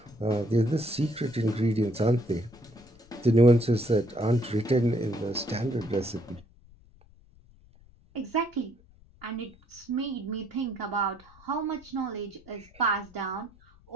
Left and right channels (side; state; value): left; noise; rumble, 26 dB below the sound